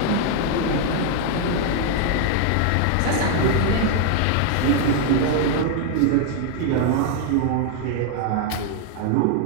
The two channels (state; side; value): different; both; correlation 0.00